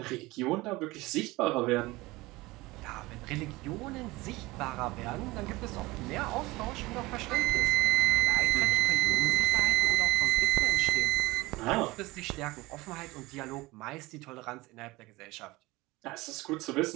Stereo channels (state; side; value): quieter; left; 21.0 dB